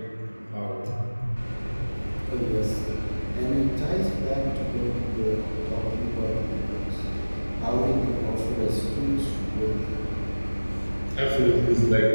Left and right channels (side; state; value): both; inverted; correlation -1.00